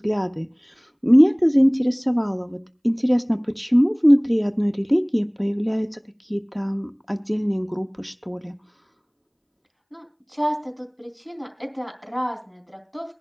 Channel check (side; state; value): both; identical; correlation 1.00